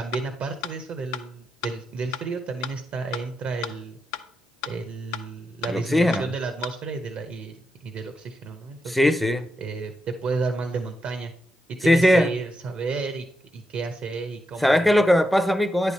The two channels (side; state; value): both; normal; correlation 0.86